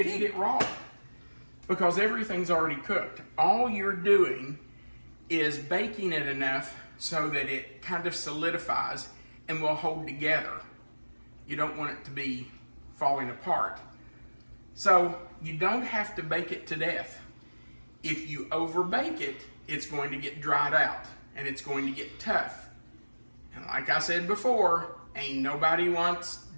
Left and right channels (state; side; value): inverted; both; correlation -1.00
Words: eat it raw because everything's already cooked. All you're doing is baking it enough so that it kind of solidifies and will hold together. You don't want it to be falling apart. So you don't have to bake it to death. If you overbake it, it's going to get dried out and it's going to get tough. And like I said before, ain't nobody wants